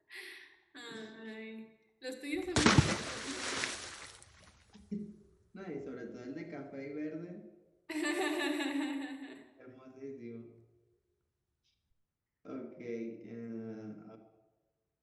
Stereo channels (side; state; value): both; identical; correlation 1.00